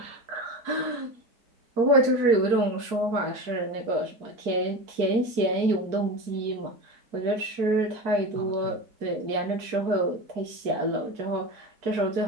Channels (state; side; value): late; left; 4.6 ms